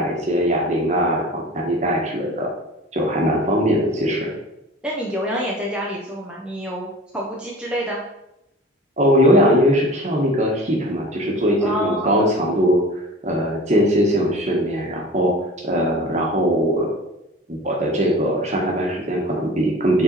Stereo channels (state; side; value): normal; both; correlation 0.40